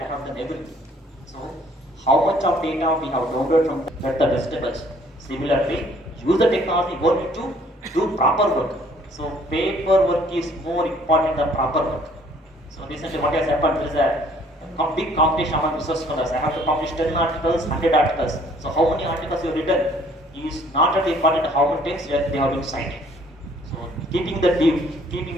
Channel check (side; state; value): both; normal; correlation 0.59